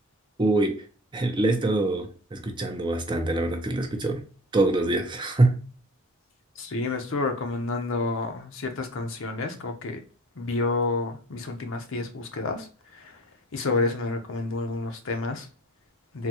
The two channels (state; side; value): normal; both; correlation 0.46